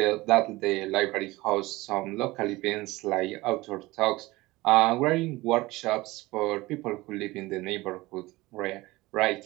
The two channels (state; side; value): quieter; left; 20.2 dB